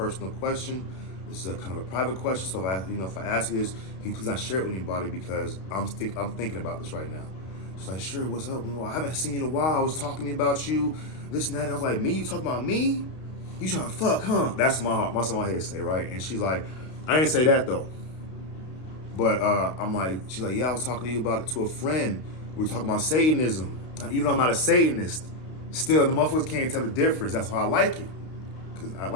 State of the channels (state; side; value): late; right; 32 ms